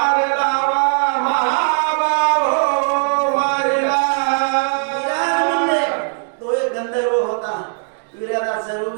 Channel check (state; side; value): silent; left; digital silence